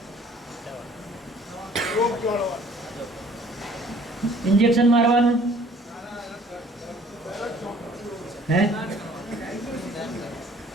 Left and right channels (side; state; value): both; normal; correlation 0.56